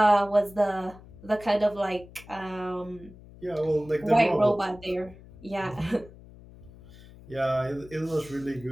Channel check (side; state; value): left; noise; hum, 20 dB below the sound